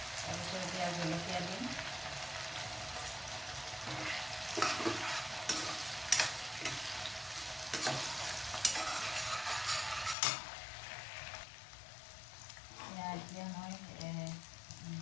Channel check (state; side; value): drops out; right; at 10.2 s